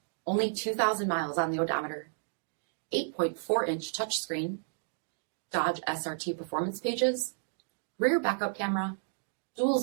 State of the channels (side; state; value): left; silent; digital silence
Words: only 2,000 miles on the odometer, 8.4-inch touchscreen, Dodge SRT performance pages, rear backup camera, dual